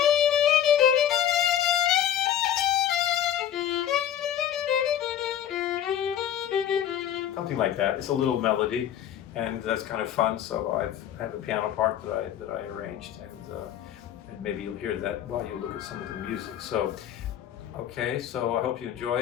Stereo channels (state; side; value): quieter; right; 10.4 dB